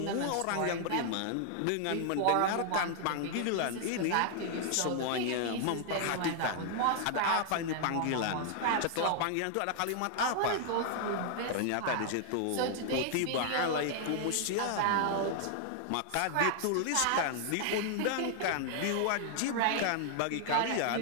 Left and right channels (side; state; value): both; different; correlation 0.00